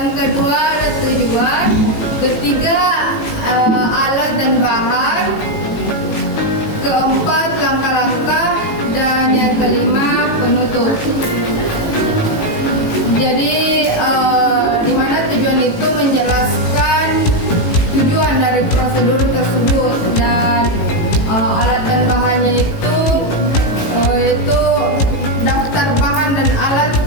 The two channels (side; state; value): right; late; 18 ms